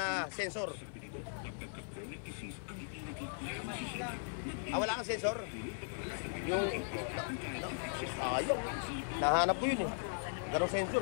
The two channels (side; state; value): right; silent; 52 dB below the other